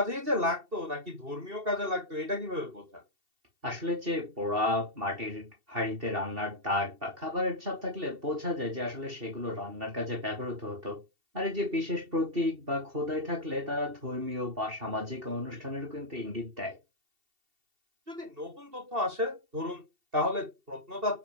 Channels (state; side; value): late; left; 2.7 ms